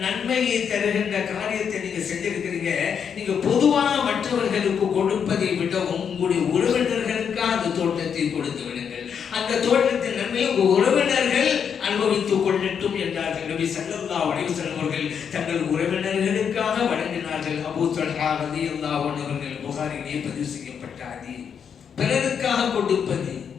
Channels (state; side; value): quieter; right; 7.3 dB